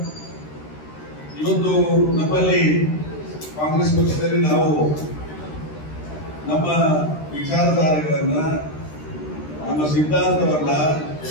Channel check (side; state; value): right; late; 13 ms